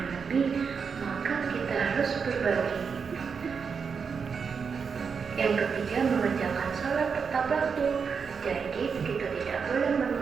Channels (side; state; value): left; quieter; 5.9 dB